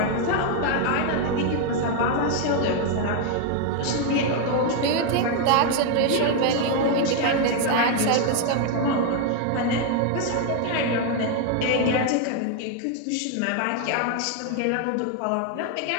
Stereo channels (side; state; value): both; different; correlation 0.00